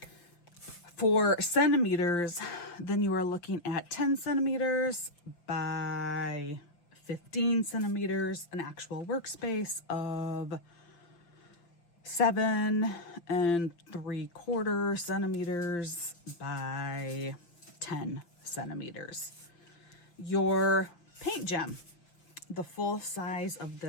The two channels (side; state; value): right; late; 5.8 ms